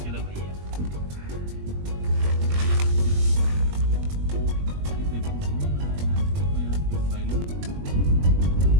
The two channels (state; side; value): late; left; 21 ms